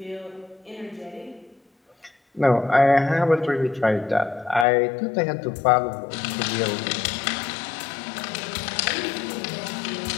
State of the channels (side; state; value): right; drops out; at 4.7 s